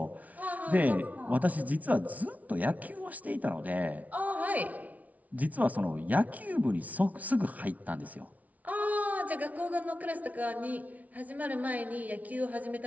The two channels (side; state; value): left; late; 0.071 ms